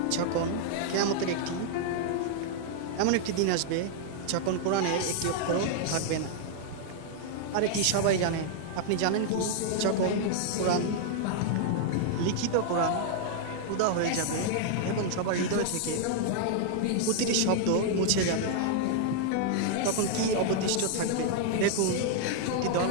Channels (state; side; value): different; both; correlation 0.00